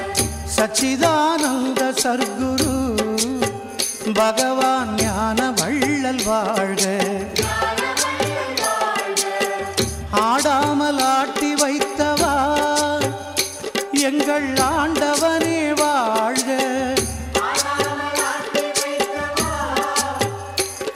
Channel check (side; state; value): both; identical; correlation 1.00